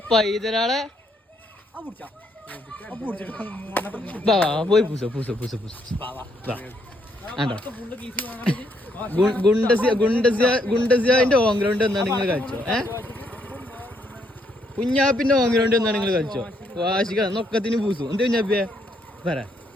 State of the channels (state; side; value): normal; both; correlation 0.73